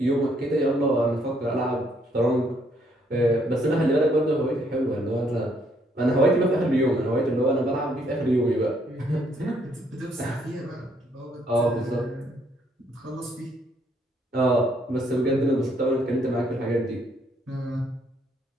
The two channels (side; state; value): both; normal; correlation 0.69